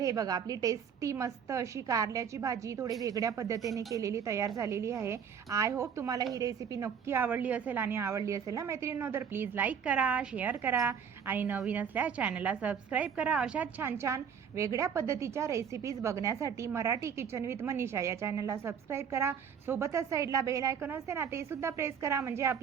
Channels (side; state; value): left; quieter; 7.3 dB